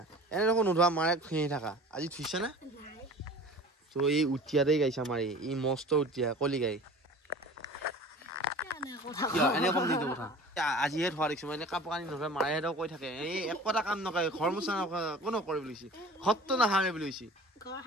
এনে দেখোন নোধোৱা মাৰে ফেঁহি থাকা আজি ধুইছে না তো এই উঠিয়াতেই গাইছে আমাৰ এই মস্ত উঠিয়া কলি গাই এনে কম নিদিওঁ কথা আজিহে ধোৱা দেখিছোঁ মই এনে কাপোৰ কানি নধৰে মায়েহেঁতেও কৈ থাকে এই একোটা কাম নকৰে ঘৰ মোচা কোনো নকৰে বুলি কৈছে ঘৰটো নাহাৰে বুলি কৈছে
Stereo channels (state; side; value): normal; both; correlation 0.42